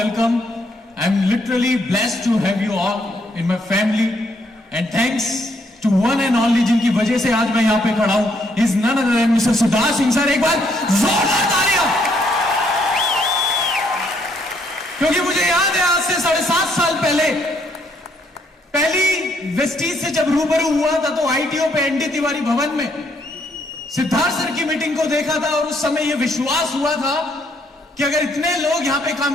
I'm literally blessed to have you all in my family, and thanks to one and only जिनकी वजह से आज मैं यहाँ पे खड़ा हूँ, is none other than Mr. Siddharth Singh sir. एक बार जोरदार तालियां. क्योंकि मुझे याद है आज से 7.5 साल पहले पहली वेस्टीज से जब रूबरू हुआ था तो आईटीओ पे एनडी तिवारी भवन में सिद्धार्थ सर की मीटिंग को देखा था, और उस समय यह विश्वास हुआ था कि अगर इतने लोग यहां पे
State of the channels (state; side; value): normal; both; correlation 0.71